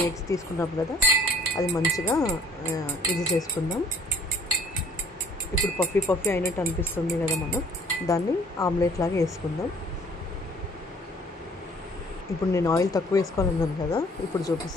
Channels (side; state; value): both; normal; correlation 0.55